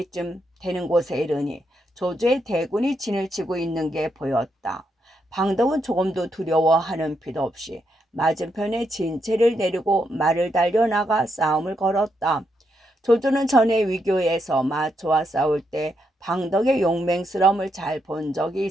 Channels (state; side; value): normal; both; correlation 0.80